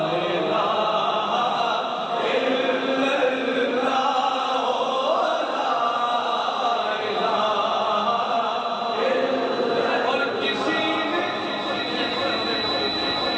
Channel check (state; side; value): identical; both; correlation 1.00